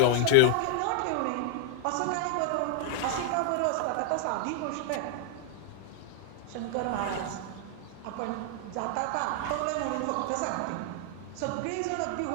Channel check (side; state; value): both; different; correlation -0.01